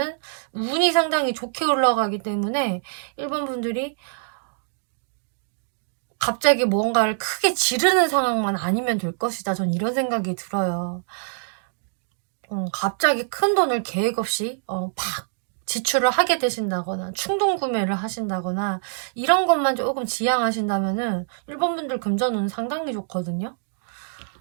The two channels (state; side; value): silent; left; digital silence